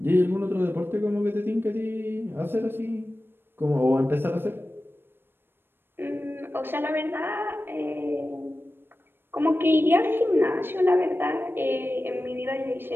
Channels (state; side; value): late; left; 0.10 ms